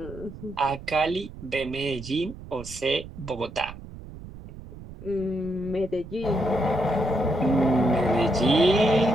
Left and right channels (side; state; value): right; noise; rumble, 15 dB below the sound